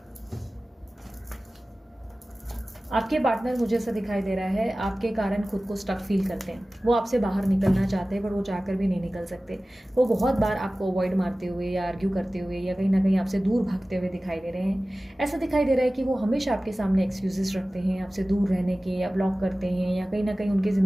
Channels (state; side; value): normal; both; correlation 0.97